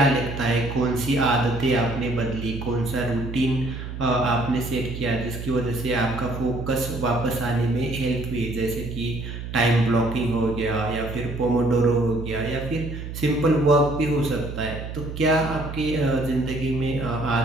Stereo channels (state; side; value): noise; right; hum, 8 dB below the sound